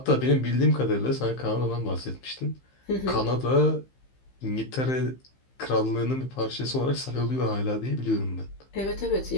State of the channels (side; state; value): right; late; 15 ms